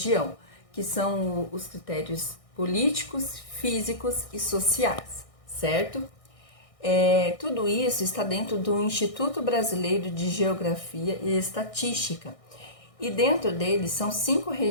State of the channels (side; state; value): right; late; 1.6 ms